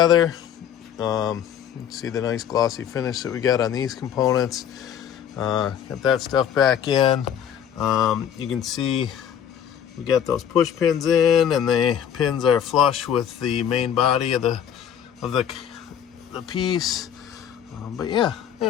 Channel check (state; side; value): quieter; right; 9.1 dB